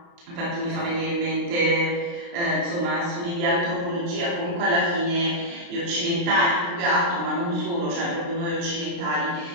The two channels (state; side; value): late; left; 29 ms